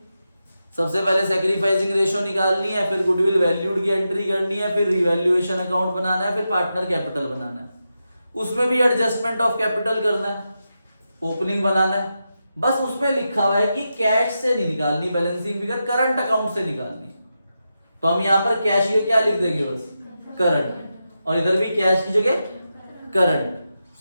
सबसे पहले सैक्रिफाइसिंग रेशियो निकालनी है, फिर गुडविल वैल्यूड की एंट्री करनी है, फिर रिवैल्यूएशन अकाउंट बनाना है, फिर पार्टनर कैपिटल बनाना है, उसमें भी एडजस्टमेंट ऑफ कैपिटल करना है, ओपनिंग बनाना है। बस उसमें लिखा हुआ है कि कैश से नहीं निकालनी बैलेंसिंग फिगर, करंट अकाउंट से निकालनी। तो हम यहां पर कैश को क्या लिख देंगे, बस करंट, और इधर भी कैश की जगह करंट,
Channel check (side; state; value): both; inverted; correlation -0.88